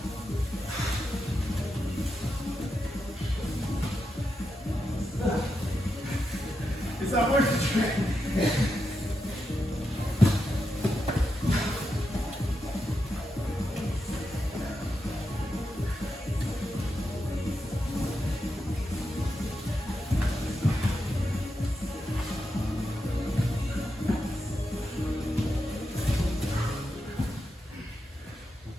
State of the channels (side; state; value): both; normal; correlation 0.86